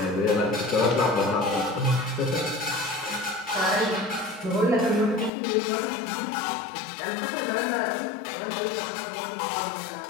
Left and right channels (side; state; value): right; drops out; at 5.3 s